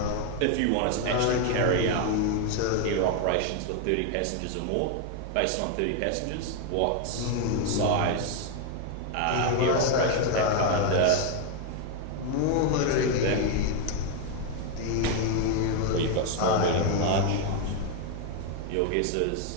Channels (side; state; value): both; different; correlation 0.01